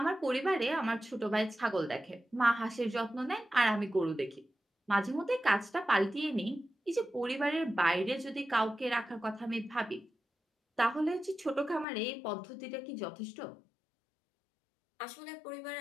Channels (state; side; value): drops out; right; at 11.9 s